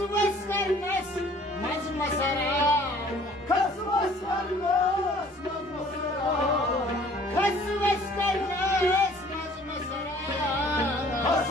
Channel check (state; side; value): normal; both; correlation 0.54